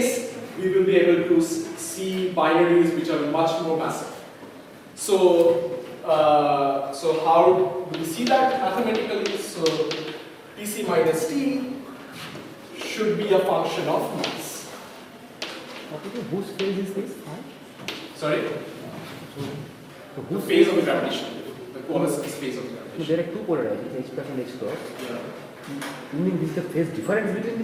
we will be able to see binaries which are much more massive. So, so how do we see that mathematically? So Tc minus T should be a function of mass. Whose phase is this? Sorry? So The phase of the gravitational wave. The coalescence phase of the So gravitational there are two polarizations, H plus and H cross. wave. You mean this is the phase difference between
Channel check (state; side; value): identical; both; correlation 1.00